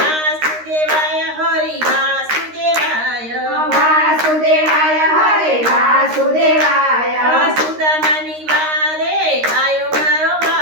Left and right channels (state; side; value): late; left; 13 ms